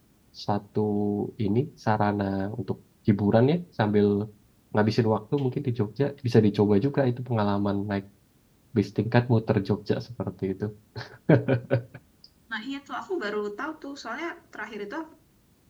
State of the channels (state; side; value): identical; both; correlation 1.00